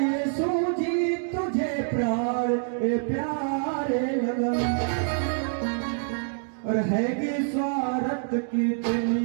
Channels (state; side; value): silent; left; digital silence